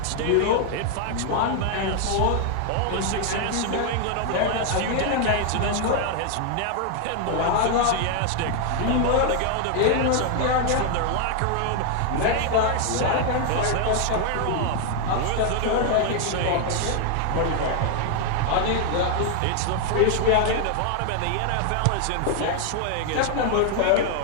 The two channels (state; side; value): different; both; correlation 0.00